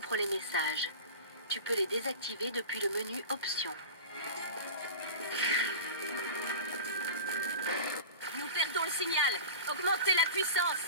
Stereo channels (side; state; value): both; inverted; correlation -0.32